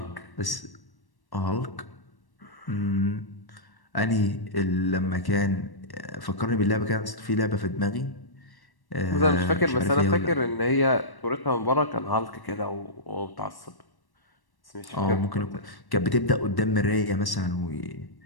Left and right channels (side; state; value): right; late; 1.1 ms